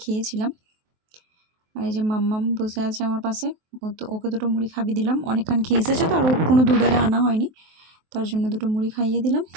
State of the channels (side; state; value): left; late; 23 ms